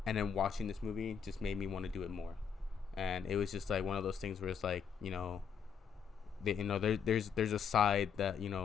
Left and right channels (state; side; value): quieter; right; 7.1 dB